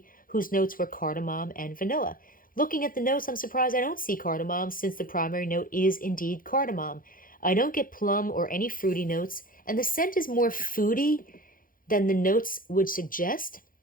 whose notes were cardamom and vanilla. Looking at the notes, I'm surprised I don't see cardamom, since the primary note is indeed cardamom. I don't get plum or any fruity notes, and the scent is more foody than the notes would suggest.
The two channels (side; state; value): right; late; 0.40 ms